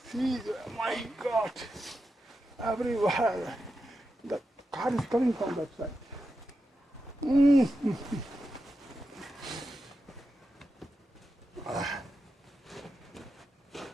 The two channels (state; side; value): normal; both; correlation 0.89